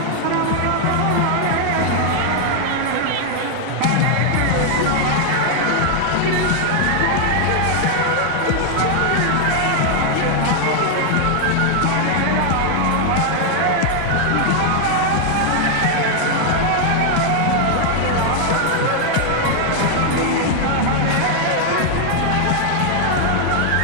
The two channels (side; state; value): both; different; correlation 0.00